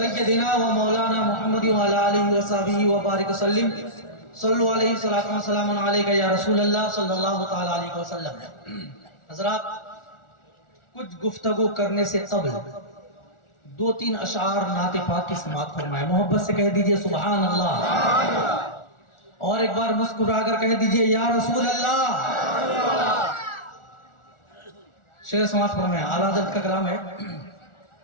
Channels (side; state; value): right; late; 1.4 ms